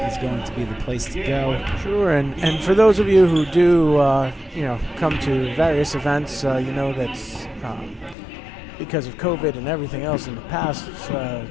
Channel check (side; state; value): right; drops out; at 8.2 s